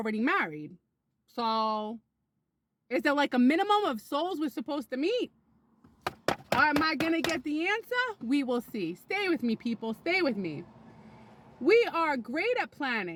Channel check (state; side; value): identical; both; correlation 1.00